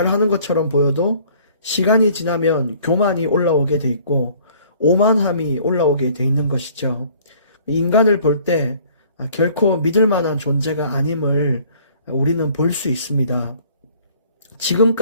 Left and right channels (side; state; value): both; inverted; correlation -0.56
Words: 것처럼 보여도 시간이 지나면 교만이 올라오게 돼 있고 오만함이 올라오게 돼 있는 것이죠. 인간을 볼 때 결코 믿을 만한 존재가 아님을 우리는 볼 수 있습니다.